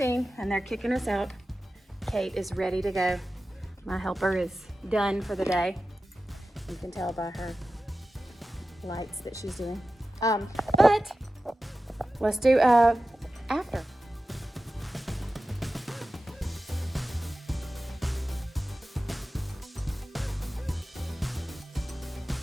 and they're kicking us out. Kate is ready to go. My helper is done for the day. You can tell by her lights that she's doing. But let's do after.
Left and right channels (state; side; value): normal; both; correlation 0.93